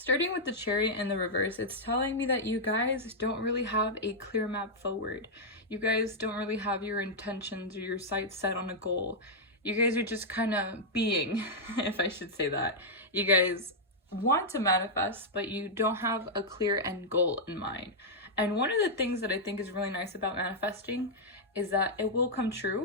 with the Chariot in the reverse, it's telling me that you guys don't really have a clear map forward. You guys don't really have your intentions or your sights set on a goal. You guys are just kind of being, if I should say that. You guys want to manifest, but you don't have a clear end goal in mind. And one of the things that I think is really nice about manifesting is that it will come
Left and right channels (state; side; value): normal; both; correlation -0.05